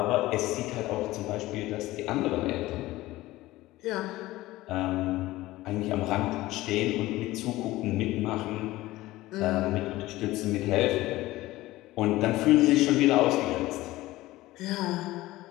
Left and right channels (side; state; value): right; quieter; 17.7 dB